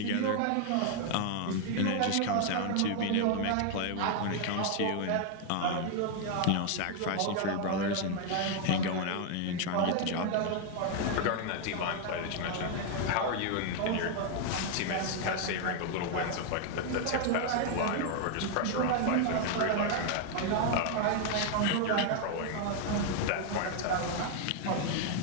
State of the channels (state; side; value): different; both; correlation 0.00